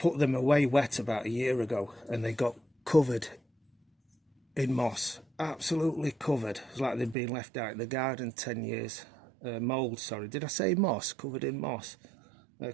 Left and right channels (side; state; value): left; drops out; at 7.2 s